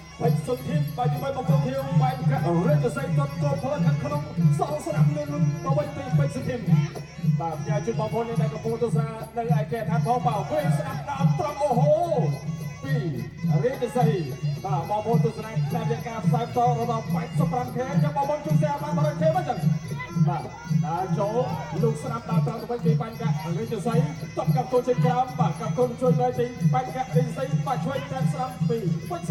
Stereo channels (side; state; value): both; identical; correlation 1.00